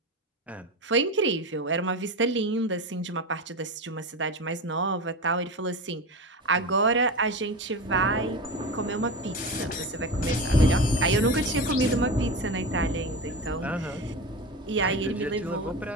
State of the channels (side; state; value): both; normal; correlation 0.25